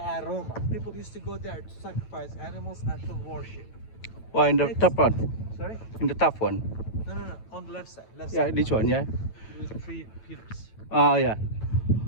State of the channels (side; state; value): right; late; 9.0 ms